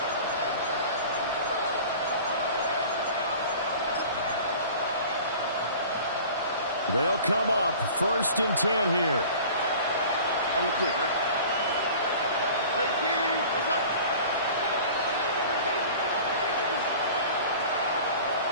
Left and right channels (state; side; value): inverted; both; correlation -0.42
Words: They'll come up 1st and 10 here. On the quick, right? 18, what's up?